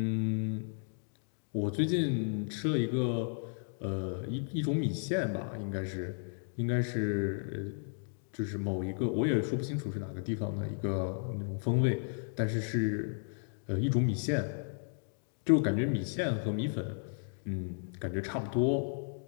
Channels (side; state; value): right; silent; digital silence